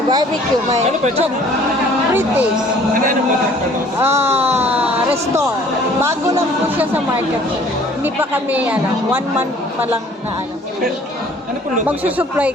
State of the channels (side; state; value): both; normal; correlation 0.54